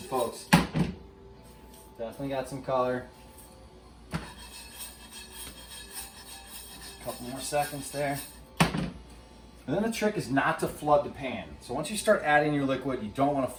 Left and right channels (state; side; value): identical; both; correlation 1.00